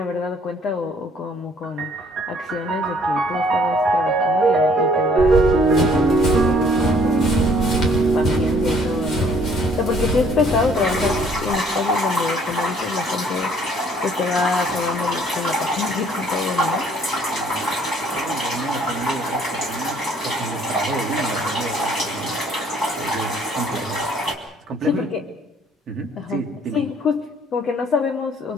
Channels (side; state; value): both; normal; correlation 0.60